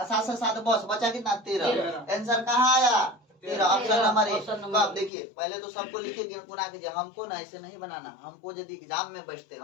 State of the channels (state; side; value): drops out; right; at 5.1 s